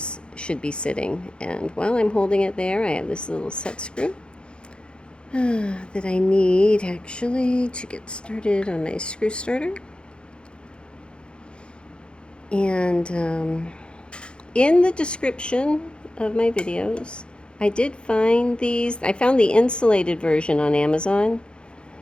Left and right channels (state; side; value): late; right; 0.054 ms